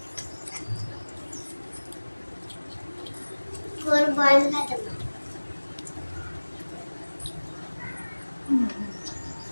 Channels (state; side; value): inverted; both; correlation -1.00